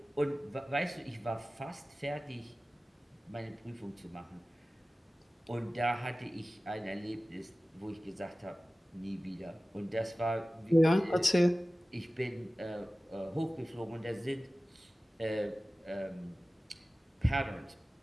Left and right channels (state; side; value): normal; both; correlation 0.97